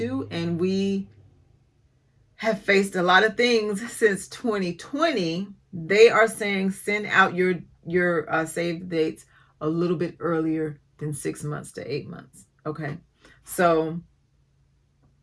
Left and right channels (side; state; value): both; identical; correlation 1.00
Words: and we have faced a lot of things since 2020, they are saying send out your save dates a little bit earlier than 6 months to 8 months. Okay. So